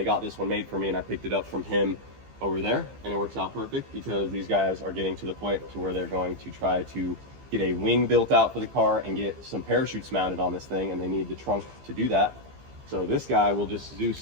got this one made for me, and I picked it up from him over there, and it works out perfect because these guys are getting to the point to where they're going to try to get a wing built out for the car and get some parachutes mounted on this thing, and they need the trunk to do that. So this guy will just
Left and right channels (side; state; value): left; late; 15 ms